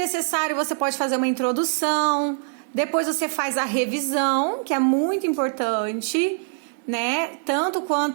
você pode fazer uma introdução, depois você faz a revisão, que é muito importante, né? Tanto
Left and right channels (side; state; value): left; silent; digital silence